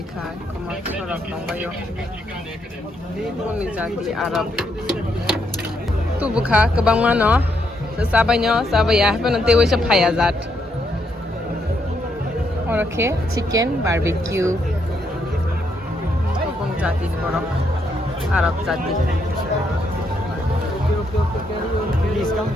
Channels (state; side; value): normal; both; correlation 0.76